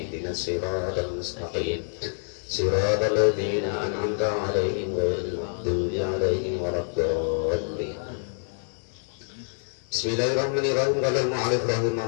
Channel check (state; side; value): silent; right; 60 dB below the other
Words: ihdinas siratal mustaqim siratal ladzina an'amta 'alaihim ghairil maghdubi 'alaihim waladdallin. Bismillahirrahmanirrahim. Qala al-mu'allif